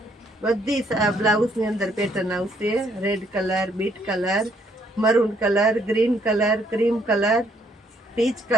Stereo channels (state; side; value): normal; both; correlation 0.69